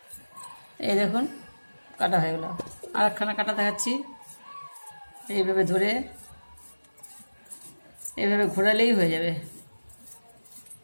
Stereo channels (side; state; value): both; inverted; correlation -1.00